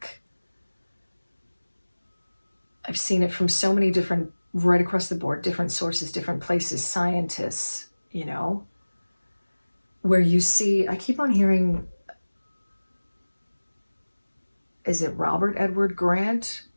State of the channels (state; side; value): inverted; both; correlation -1.00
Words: I've seen it from so many different, right across the board, different sources, different places, scientists, you know, where you see, I keep on hearing, is it Robert Edward Grant?